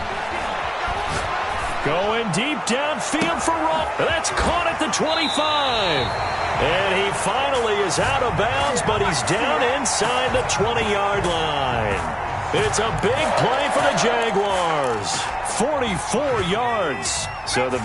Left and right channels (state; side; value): identical; both; correlation 1.00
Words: Going deep downfield for Roll. That's caught at the 25. And he finally is out of bounds, but he's down inside the 20-yard line. It's a big play for the Jaguars. 44 yards. So the